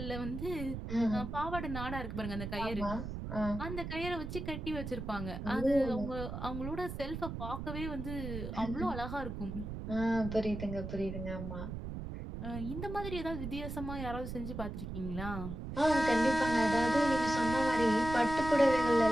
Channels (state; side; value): noise; right; rumble, 6 dB below the sound